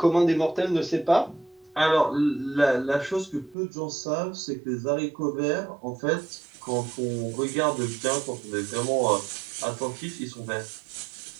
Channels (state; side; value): drops out; left; at 3.6 s